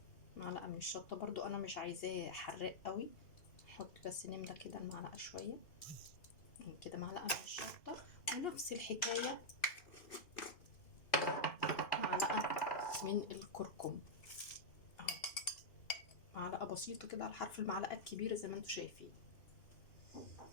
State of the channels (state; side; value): late; right; 2.5 ms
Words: معلقه من الشطه برضو انا مش عايزاه حراق قوي، نحط بس نملى كده المعلقه شويه كده، معلقه من الشطه. ونفس الحكايه معلقه من الكركم، معلقه بسيطه كده على حرف المعلقه الكبيره زي ما انتوا شايفين.